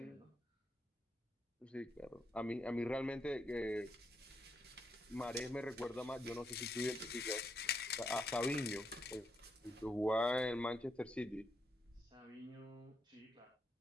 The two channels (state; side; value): normal; both; correlation 0.80